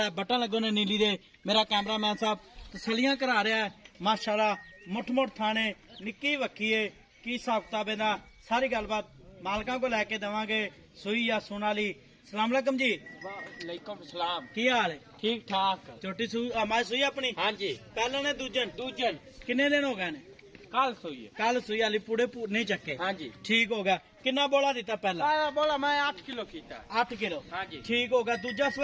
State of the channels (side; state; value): both; identical; correlation 1.00